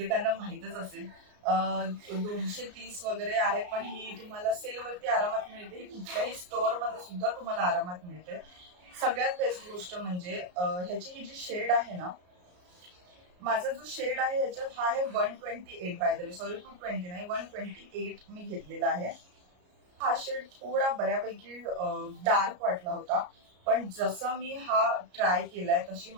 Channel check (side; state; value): left; late; 33 ms